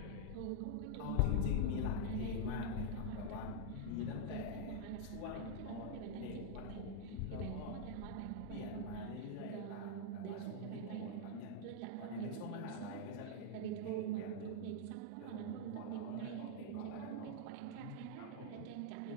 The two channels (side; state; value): both; different; correlation -0.01